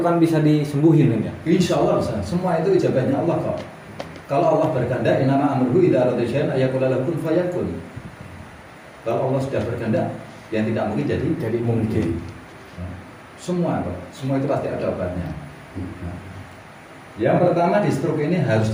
bisa disembuhin kan ya? Insya Allah bisa. Semua itu ijabahnya Allah kok. Kalau Allah berkehendak, innama amruhu idza arada syai'an ayaqula lahu kun fayakun. Kalau Allah sudah berkehendak, yang tidak mungkin jadi mungkin. Semua kok. Semua itu pasti ada obatnya. Yang pertama di stroke ini harus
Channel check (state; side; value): identical; both; correlation 1.00